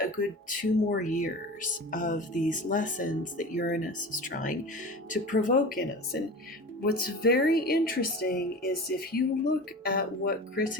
a good 2 more years of these lessons that Uranus is trying to provoke in us. And what's very interesting is if you look at what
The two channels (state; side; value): normal; both; correlation 0.33